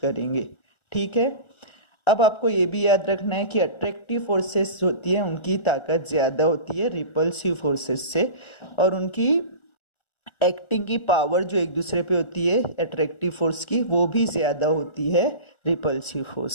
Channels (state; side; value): late; right; 1.4 ms